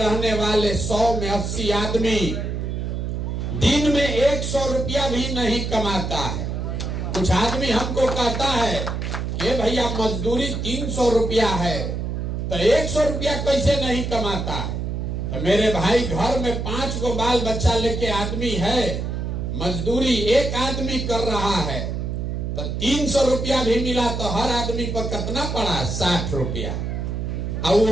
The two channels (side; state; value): right; noise; hum, 3 dB below the sound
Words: वाले 100 में 80 आदमी दिन में 100 रुपया भी नहीं कमाता है। कुछ आदमी हमको कहता है कि भैया मजदूरी 300 रुपया है, तो 100 रुपया कैसे नहीं कमाता है? तो मेरे भाई, घर में 5 को बाल बच्चा लेके आदमी है, मजदूरी एक आदमी कर रहा है, तो 300 रुपया भी मिला तो हर आदमी पर कितना पड़ा? 60 रुपया। और